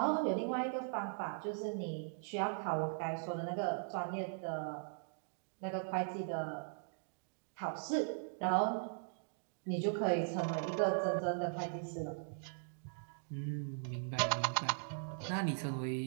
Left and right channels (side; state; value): left; silent; digital silence